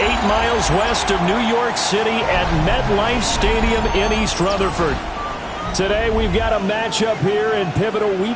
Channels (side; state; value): both; identical; correlation 1.00